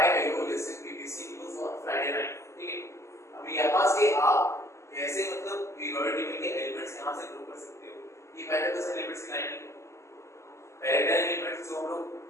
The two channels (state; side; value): late; right; 0.13 ms